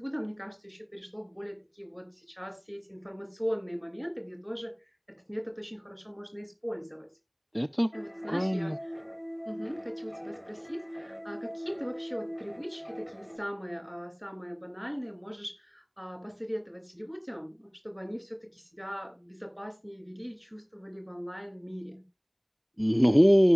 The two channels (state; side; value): identical; both; correlation 1.00